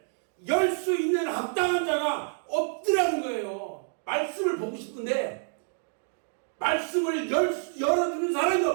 열 수 있는 합당한 자가 없더라는 거예요. 말씀을 보고 싶은데 말씀을 열어주는 사람이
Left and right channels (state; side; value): silent; left; 59 dB below the other